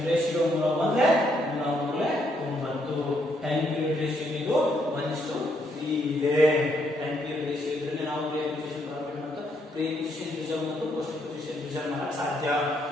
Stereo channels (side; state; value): both; normal; correlation 0.73